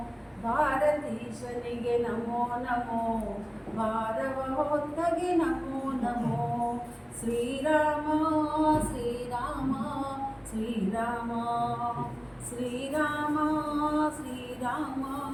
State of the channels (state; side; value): identical; both; correlation 1.00